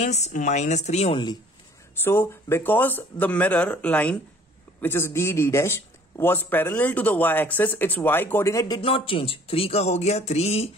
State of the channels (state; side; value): normal; both; correlation 0.54